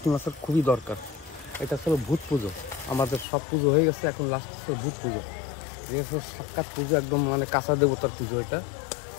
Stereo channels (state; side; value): drops out; right; at 3.2 s